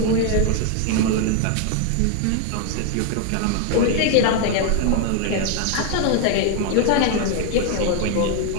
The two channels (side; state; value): both; different; correlation 0.01